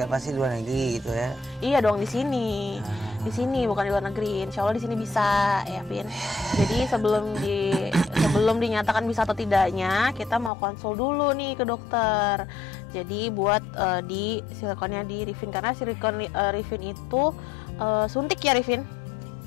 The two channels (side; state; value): right; drops out; at 10.5 s